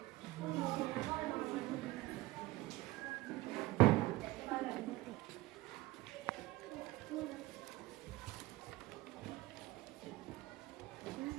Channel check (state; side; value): quieter; left; 18.5 dB